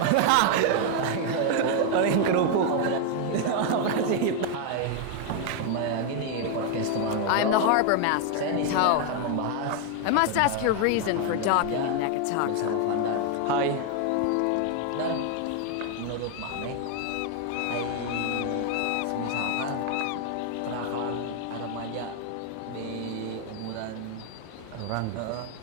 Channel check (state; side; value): different; both; correlation 0.00